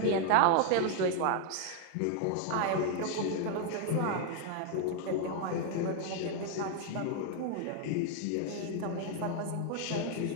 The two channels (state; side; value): different; both; correlation 0.00